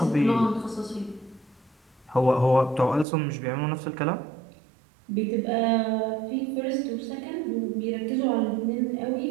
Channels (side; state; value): left; drops out; at 3.1 s